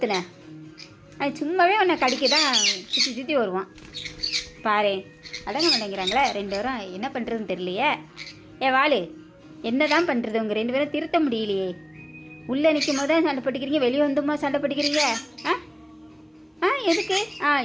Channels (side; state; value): both; identical; correlation 1.00